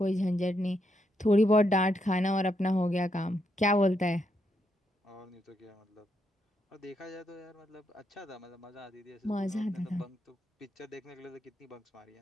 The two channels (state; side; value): normal; both; correlation 0.79